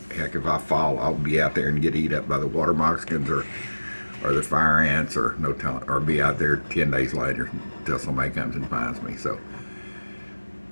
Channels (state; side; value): inverted; both; correlation -1.00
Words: Heck, if I fall, I'll be out there and get eat up by the water moccasins or the fire ants, or no telling, or be out there 10 days later until somebody comes and finds me. So